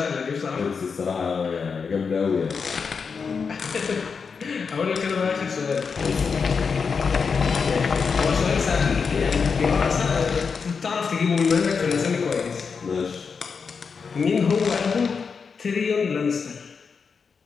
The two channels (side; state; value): right; quieter; 5.6 dB